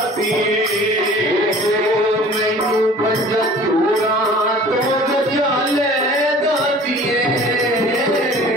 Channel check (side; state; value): both; normal; correlation 0.46